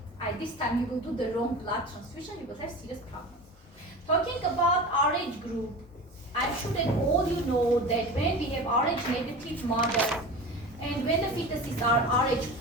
This time you will do the wrong blood transfusion, you will have serious problems. Talking about RH group, I'm sure that all you know that when we have RH negative mother and when the fetuses are RH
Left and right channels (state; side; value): normal; both; correlation 0.32